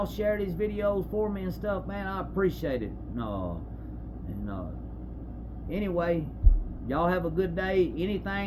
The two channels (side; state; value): both; identical; correlation 1.00